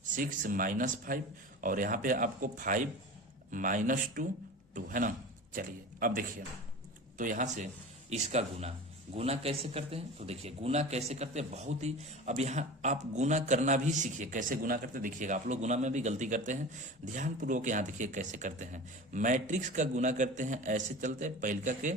6 -5 और यहाँ पे आपको 5 -2 2 है ना। चलिए अब देखिए, तो यहाँ से इसका गुना कैसे करते हैं, तो देखिए गुना कैसे करते हैं बहुत ही, अब यहाँ आप गुना करना भी सीखिए, कैसे गुना करते हैं देखिएगा। आप लोग गुना में भी गलती करते हैं, ध्यानपूर्वक यहाँ देखिए कैसे करते हैं। मैट्रिक्स का गुना करते हैं, ऐसे चलते हैं, पहिलका के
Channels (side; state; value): both; normal; correlation 0.34